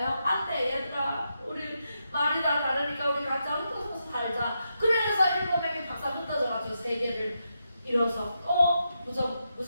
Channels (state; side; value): inverted; both; correlation -0.85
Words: 안 돼, 얘들아. 우리 말이 다 다르니까 우리 각자 흩어져서 살자. 그래서 7명이 박사 흩어져가지고 세계를 이뤄서 또